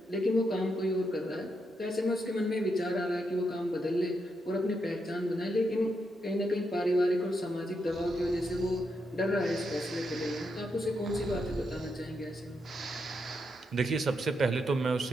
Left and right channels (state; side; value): normal; both; correlation 0.82